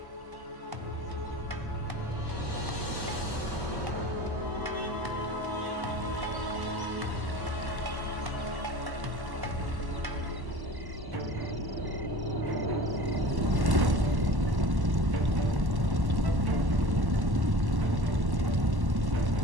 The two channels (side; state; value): left; late; 1.1 ms